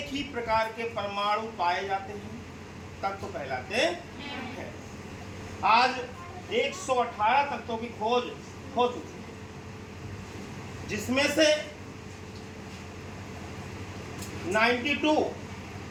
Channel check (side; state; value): both; identical; correlation 1.00